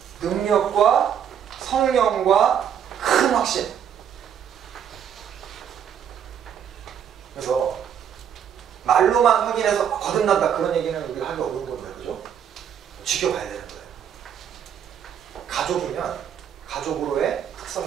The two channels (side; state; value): left; quieter; 8.7 dB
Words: 능력과 성령과 큰 확신. 그래서 말로만 확인해서 거듭난다 그런 얘기는 우리가 하기 어려운 거예요. 그죠? 지켜봐야 되는 거예요. 가족이면 가족으로의